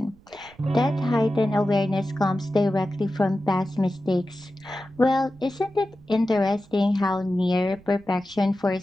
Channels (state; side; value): noise; right; rumble, 25 dB below the sound